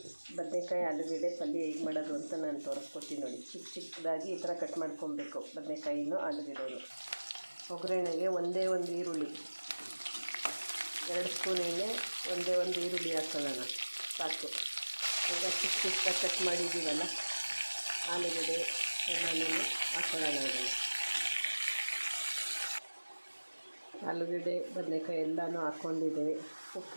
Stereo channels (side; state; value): both; inverted; correlation -1.00